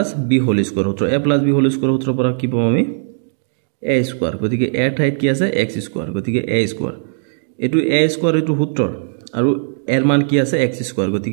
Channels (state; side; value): silent; left; digital silence